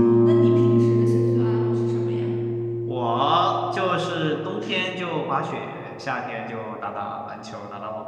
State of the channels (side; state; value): both; identical; correlation 1.00